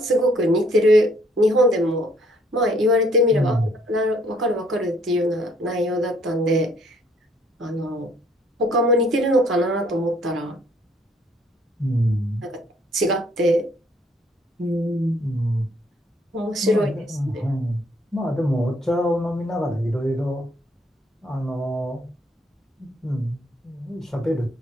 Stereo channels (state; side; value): normal; both; correlation 0.64